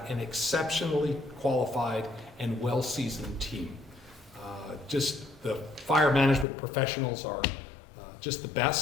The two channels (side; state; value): right; drops out; at 6.5 s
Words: an exceptionally qualified and well-seasoned team. Just the fire management professionals are just the